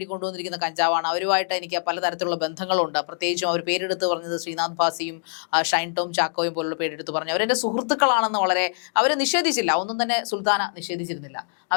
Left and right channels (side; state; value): right; silent; 62 dB below the other